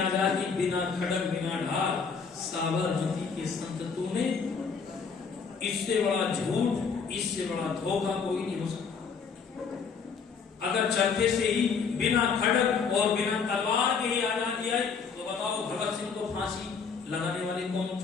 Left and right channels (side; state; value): right; quieter; 5.7 dB